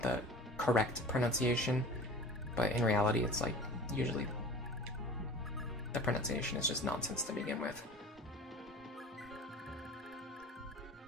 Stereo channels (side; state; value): both; normal; correlation 0.40